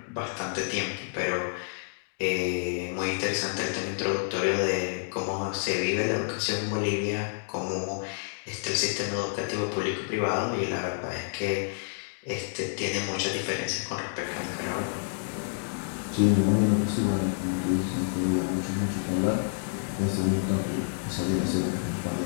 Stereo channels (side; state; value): right; silent; digital silence